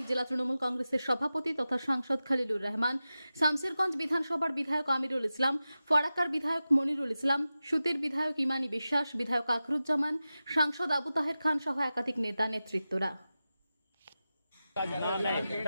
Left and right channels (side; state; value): both; inverted; correlation -0.94